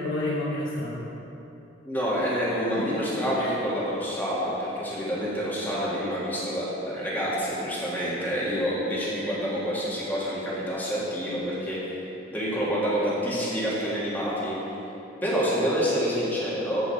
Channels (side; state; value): both; normal; correlation 0.38